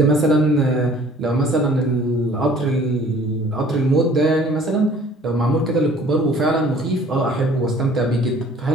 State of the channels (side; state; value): both; normal; correlation 0.53